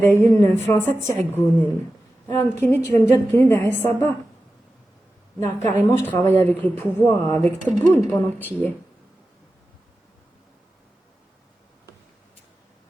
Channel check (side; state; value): both; normal; correlation 0.93